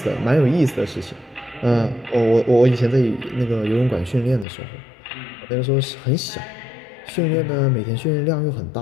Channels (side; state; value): right; drops out; at 4.5 s